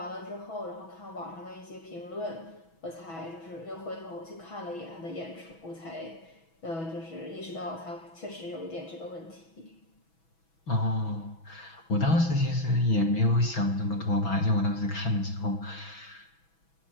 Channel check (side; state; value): right; late; 6.1 ms